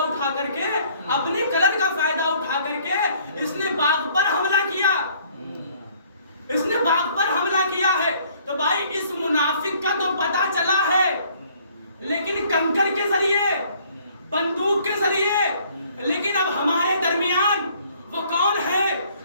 کر کے، اپنے کلر کا فائدہ اٹھا کر کے اس نے باغ پر حملہ کیا، اس نے باغ پر حملہ کیا ہے۔ تو بھائی اس منافق کا تو پتہ چلا ہے، لیکن کنکر کے ذریعے، بندوق کے ذریعے، لیکن اب ہمارے درمیان وہ کون ہے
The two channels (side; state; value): both; inverted; correlation -0.60